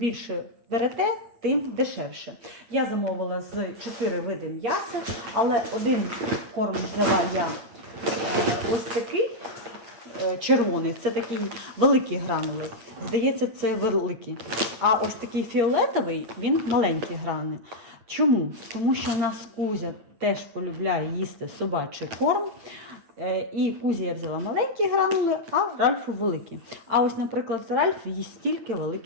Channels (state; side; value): late; left; 8.9 ms